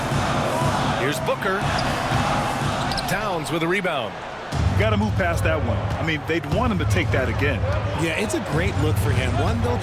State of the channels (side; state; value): both; identical; correlation 1.00